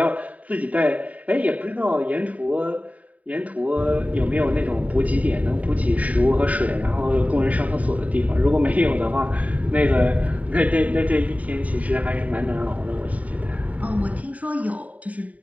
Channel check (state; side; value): late; left; 0.070 ms